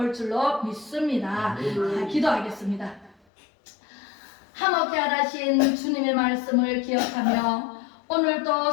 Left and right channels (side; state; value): right; drops out; at 3.2 s